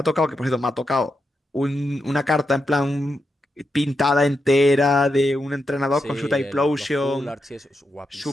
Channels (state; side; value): normal; both; correlation 0.86